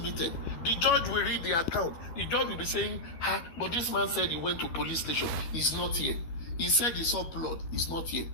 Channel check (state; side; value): late; right; 12 ms